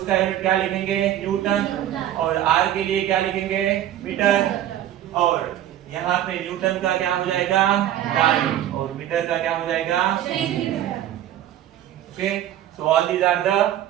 का यूनिट क्या लिखेंगे न्यूटन, और R के लिए क्या लिखेंगे मीटर, और यहाँ पे न्यूटन का क्या हो जाएगा डाइन, और मीटर का क्या हो जाएगा। Okay, so all these are the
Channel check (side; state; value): left; quieter; 12.0 dB